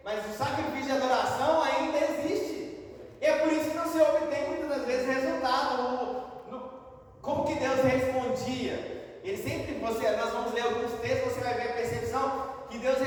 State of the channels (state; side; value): identical; both; correlation 1.00